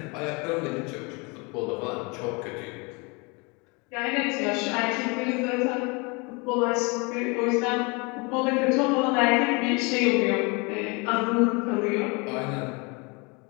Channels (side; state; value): right; quieter; 29.5 dB